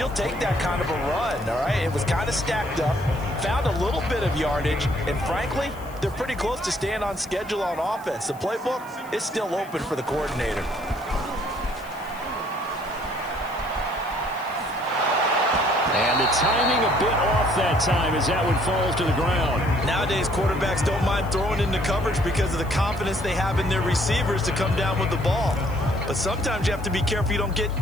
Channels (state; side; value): noise; left; hiss, 23 dB below the sound